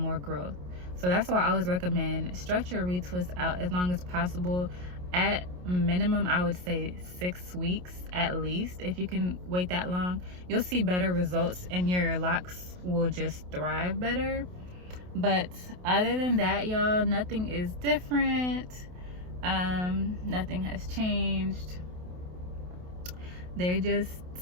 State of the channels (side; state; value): left; late; 28 ms